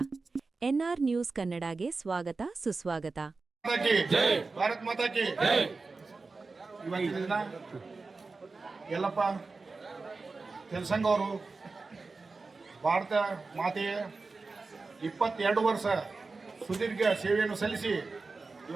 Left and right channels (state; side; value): quieter; left; 4.0 dB